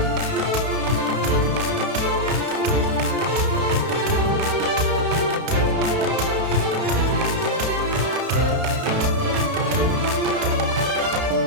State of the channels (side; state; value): left; late; 32 ms